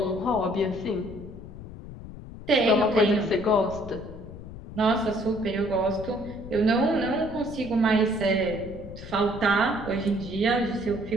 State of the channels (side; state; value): left; noise; rumble, 13 dB below the sound